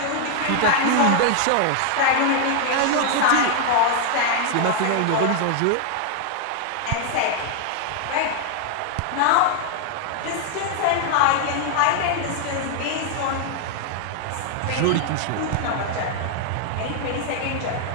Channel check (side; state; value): both; different; correlation 0.00